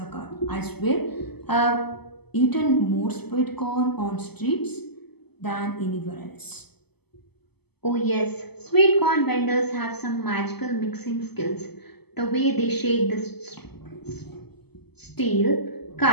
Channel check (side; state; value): right; late; 0.97 ms